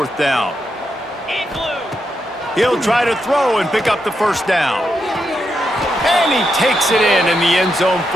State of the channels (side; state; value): both; normal; correlation 0.83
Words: down. He'll try to throw and pick up the first down. And he takes it in the end zone